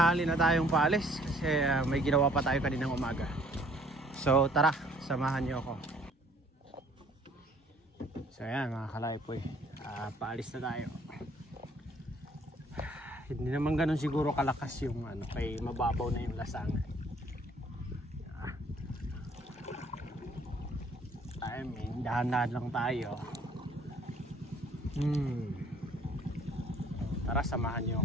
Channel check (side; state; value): both; normal; correlation 0.59